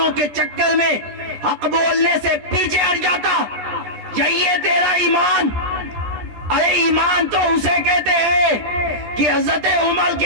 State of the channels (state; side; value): late; left; 14 ms